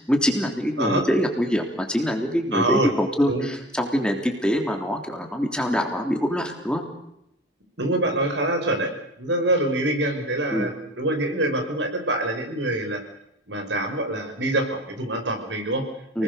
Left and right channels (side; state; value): both; normal; correlation 0.42